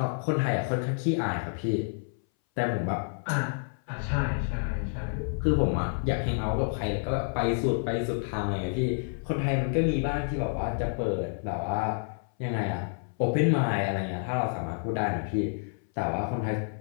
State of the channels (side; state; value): right; silent; 59 dB below the other